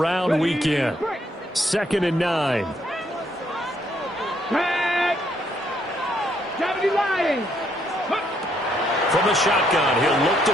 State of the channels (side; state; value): both; normal; correlation 0.71